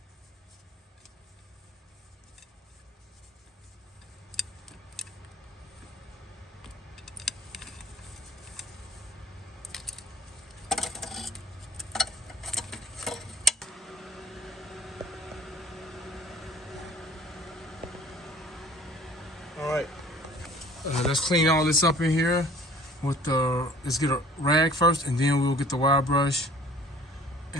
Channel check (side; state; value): both; normal; correlation 0.51